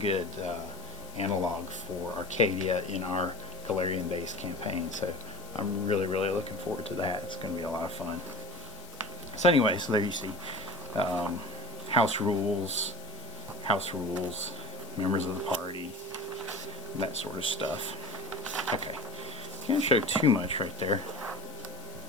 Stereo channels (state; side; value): noise; left; hiss, 19 dB below the sound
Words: analog for Arcadia in our Galarian-based campaign. So I'm really looking forward to that. It's going to be a lot of fun. So anyway, so there you see house rules, members of the party, that sort of stuff. Okay, can't show too much right there.